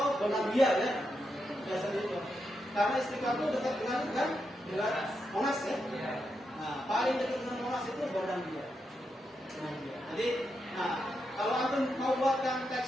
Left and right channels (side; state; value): both; normal; correlation 0.85